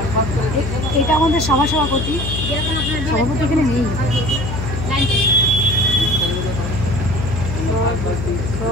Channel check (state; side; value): noise; left; hum, 4 dB below the sound